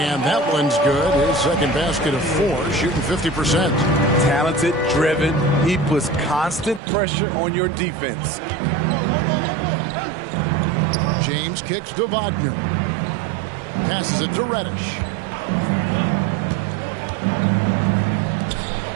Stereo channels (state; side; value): drops out; left; at 6.8 s